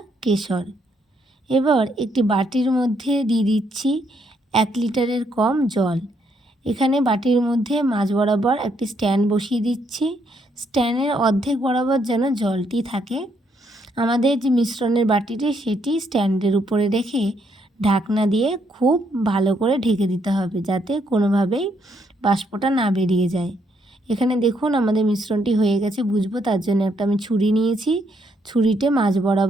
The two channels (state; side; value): normal; both; correlation 0.73